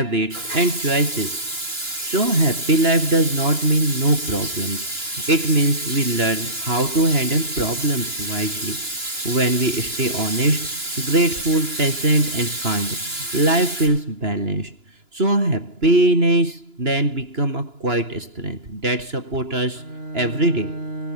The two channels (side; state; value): left; late; 2.9 ms